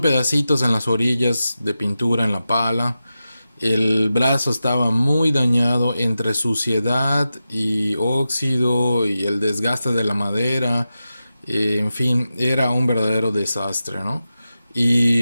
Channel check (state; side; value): inverted; both; correlation -0.92